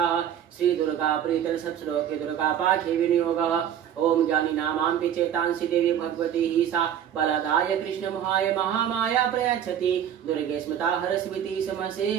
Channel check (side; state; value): left; quieter; 9.6 dB